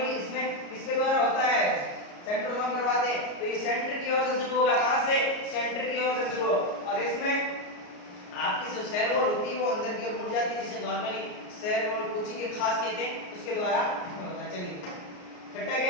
इसमें किसके द्वारा होता है? सेंट्रोसोम करवाते हैं। तो ये सेंटर की ओर से शुरू होगा, कहां से? सेंटर की ओर से शुरू हो, और इसमें आपकी जो सेल वॉल होती है वो अंदर की ओर मुड़ जाती है, जिसे नॉर्मली सेल वॉल कुची के खास कहते हैं, उसके द्वारा होता है। चलिए छठा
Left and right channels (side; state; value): right; late; 33 ms